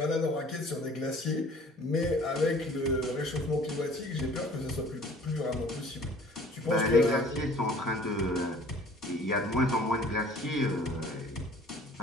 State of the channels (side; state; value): both; normal; correlation 0.51